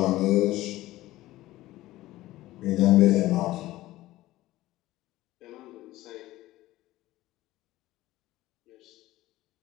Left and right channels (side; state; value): right; quieter; 16.6 dB